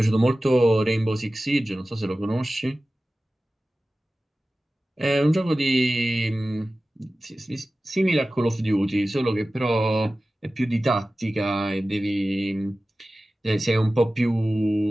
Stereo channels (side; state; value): both; normal; correlation 0.96